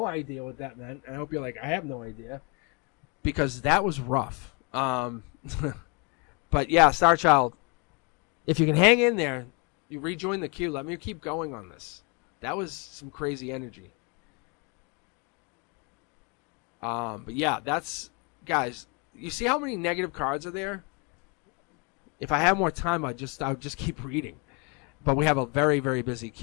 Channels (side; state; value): right; quieter; 32.4 dB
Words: idea what that meant. I hope you're like, I have no idea. Because that was rough. But yeah, Star Child, if you can hang in there, you rejoin the queue. Let me keep going on this. That was some crazy energy. But yeah, that's, guys, you see how many negative cards are there? If I have more time, I would just keep reading. But we have a very, very busy